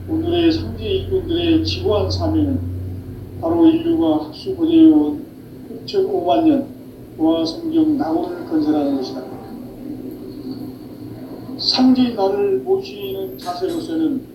오늘의 상제 일꾼들의 지구한 사명은 바로 인류가 학수고대해온 6,5만 년 보아 성경 낙원을 건설하는 것이다. 상제의 나를 모시는 자세로서는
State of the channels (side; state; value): both; identical; correlation 1.00